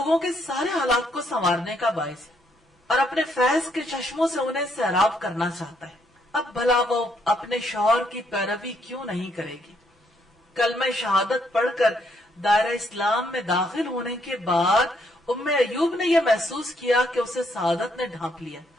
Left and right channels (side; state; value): both; normal; correlation 0.72